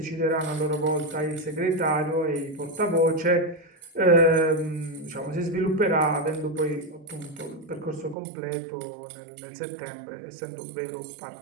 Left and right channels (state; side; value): drops out; left; at 8.2 s